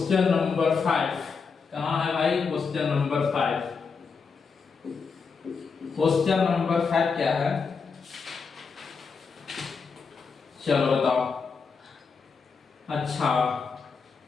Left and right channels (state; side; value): quieter; right; 5.3 dB